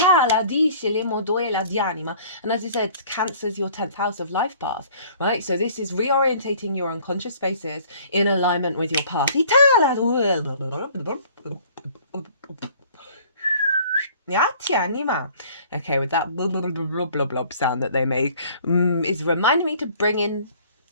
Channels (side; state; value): both; inverted; correlation -0.53